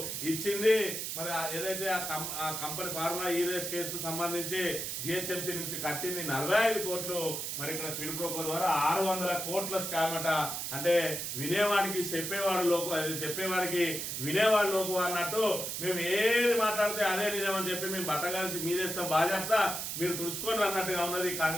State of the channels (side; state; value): right; noise; hiss, 4 dB below the sound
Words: ఇచ్చింది. మరి ఏదైతే ఆ కంపెనీ ఫార్ములా ఈ రేస్ కేసుకు సంబంధించి జిహెచ్ఎంసీ నుంచి కట్టింది 45 కోట్లు. మరి ఇక్కడ క్విట్ ప్రోకో ద్వారా 600 కోట్ల స్కామ్ అట. అంటే వినేవాడికి చెప్పేవాడికి వినేవాడు లోకు అన్నట్టు మేము ఏది మాట్లాడితే అదే నిజం అని చెప్పి మేము బట్టగాల్సి మీదేస్తాం బాధ్యత మీరు తుడుచుకొని అన్నట్టుగా ఉన్నది